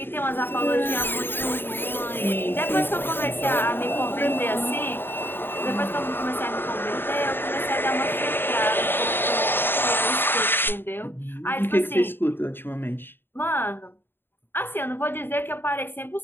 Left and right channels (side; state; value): right; late; 0.10 ms